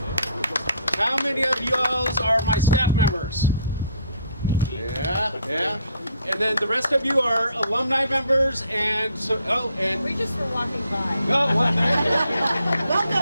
How many of you are my staff members? Yeah. And then the rest of you are alumni members, and so. And We just were walking by. oh, what?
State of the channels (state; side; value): inverted; both; correlation -0.64